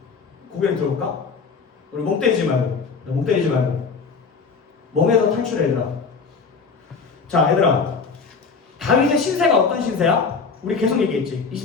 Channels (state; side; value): quieter; right; 5.0 dB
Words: 고개를 들어볼까? 우리 멍 때리지 말고 멍에서 탈출해. 얘들아, 자, 얘들아, 다윗의 신세가 어떤 신세야? 우리 계속 얘기했지.